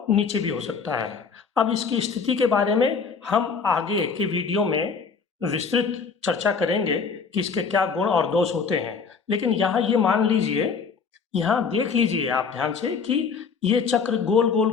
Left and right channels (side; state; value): right; quieter; 5.5 dB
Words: नीचे भी हो सकता है। अब इसकी स्थिति के बारे में हम आगे के वीडियो में विस्तृत चर्चा करेंगे कि इसके क्या गुण और दोष होते हैं, लेकिन यहाँ ये मान लीजिए, यहाँ देख लीजिए आप ध्यान से कि ये चक्र गोल